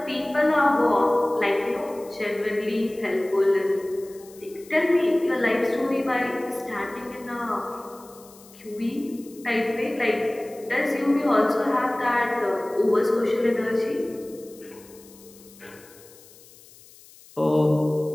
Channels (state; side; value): noise; left; hiss, 23 dB below the sound